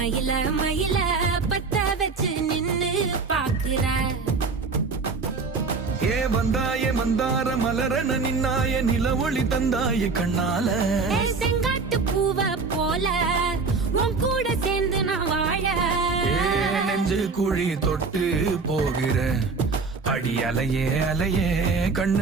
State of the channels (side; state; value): left; quieter; 4.5 dB